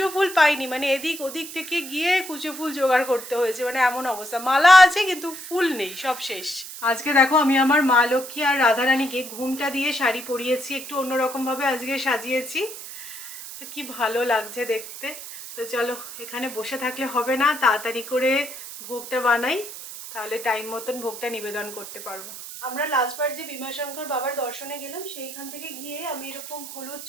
ফুল পাইনি, মানে এদিক ওদিক থেকে গিয়ে কুচো ফুল জোগাড় করতে হয়েছে, মানে এমন অবস্থা। মালা আছে কিন্তু ফুল নেই, সব শেষ। আজকে দেখো, আমি আমার মা লক্ষ্মী আর রাধারানীকে ঘুমটা দিয়ে শাড়ি পরিয়েছি, একটু অন্যরকমভাবে আজকে সাজিয়েছি। তো কি ভালো লাগছে দেখতে। তো চলো, এখানে বসে থাকলে হবে না, তাড়াতাড়ি করে ভোগটা বানাই, তাহলে টাইম মতন ভোগটা নিবেদন করতে পারবো। আমরা লাস্টবার যে ভীমাশঙ্কর বাবার দর্শনে গেলাম, সেইখান থেকে গিয়ে আমি এরকম হলুদ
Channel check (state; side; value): noise; right; hiss, 11 dB below the sound